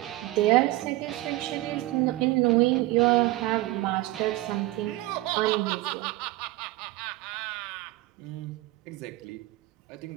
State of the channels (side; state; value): left; quieter; 18.5 dB